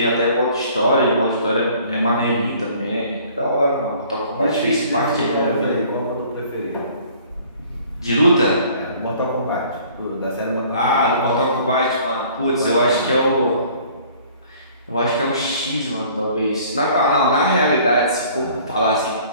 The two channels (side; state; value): both; inverted; correlation -0.54